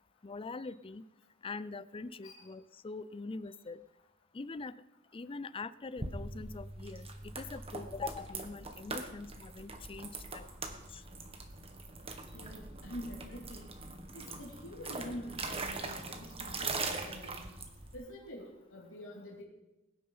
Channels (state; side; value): normal; both; correlation 0.27